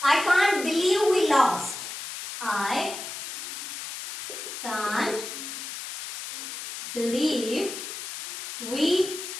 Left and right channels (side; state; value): left; noise; hiss, 8 dB below the sound